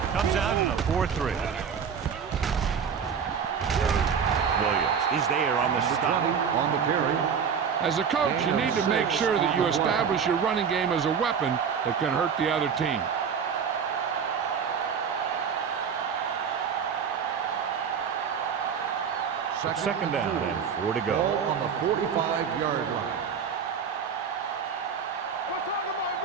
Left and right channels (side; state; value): left; quieter; 6.8 dB